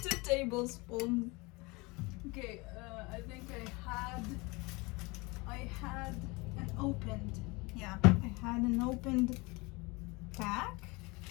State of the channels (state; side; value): quieter; right; 25.5 dB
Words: tablespoons. Okay, I think I had an opened, yeah, I had an opened pack,